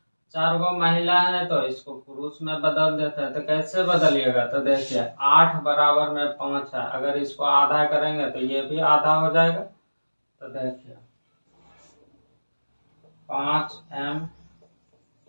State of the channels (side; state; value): both; inverted; correlation -1.00